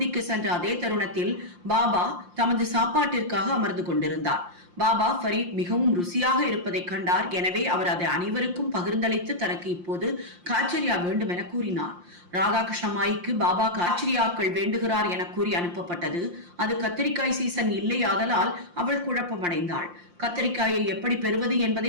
சென்ற அதே தருணத்தில் பாபா தமது சாப்பாட்டிற்காக அமர்ந்து கொண்டிருந்தார். பாபா ஃபரீத் மிகவும் ருசியாக இருப்பதை கண்டார். எனவே அவர் அதை அனைவருக்கும் பகிர்ந்தளித்து தனக்கு இப்போது காச்சரியா வேண்டும் என கூறினார். ராதாகிருஷ்ணமாய்க்கு பாபா காச்சரியாக்கள் வேண்டுகிறார் என கூறி அனுப்பப்பட்டது. அது கத்தரிக்காய் சீசன் இல்லை, ஆதலால் அவள் குழப்பமடைந்தாள். கத்தரிக்காயை எப்படி பெறுவது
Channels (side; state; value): left; late; 5.7 ms